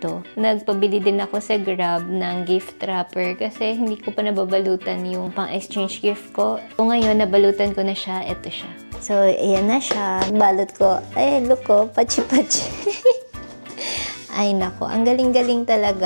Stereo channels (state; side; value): inverted; both; correlation -1.00